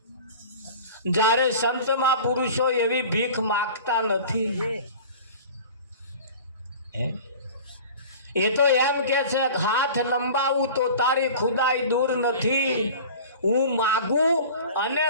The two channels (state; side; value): inverted; both; correlation -0.40